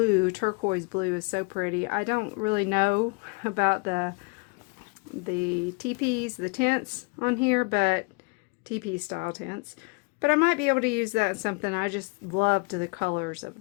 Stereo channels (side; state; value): right; quieter; 30.8 dB